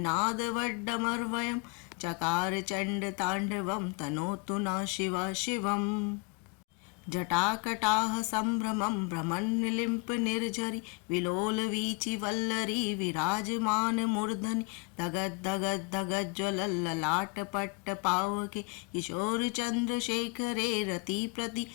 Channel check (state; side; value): quieter; right; 30.1 dB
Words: वड्डमर्वयं चकार चंड तांडवं तनोतु न शिवा शिवम्। जटाकटाह संभ्रमं भ्रमन्निलिम्प निर्झरि विलोल वीचि वल्लरी विराजमान मूर्धनि धगत धगत धगत ज्वलल ललाट पट्ट पावके किशोर चंद्रशेखरे रति